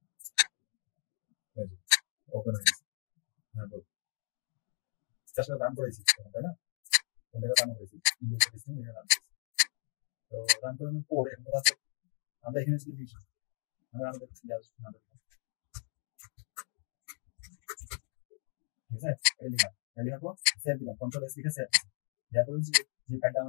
ওপেন হয়ে গেছে। হ্যাঁ, আসলে রান করেছি, তাই না? এটা রান করেছি, ইন্ডিয়ান সিস্টেম এটা রান করেছি। তো রান করানোর পর এখন কথা হচ্ছে আমরা এখানে যদি লিখি, আমরা আমাদের ঠিক আছে, এটা লিখলাম, এটা লেখার পর সেভ দিলাম, কন্ট্রোল এস লিখে সেভ। দেওয়ার পরে যে ফাইলটা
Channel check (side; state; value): right; quieter; 39.8 dB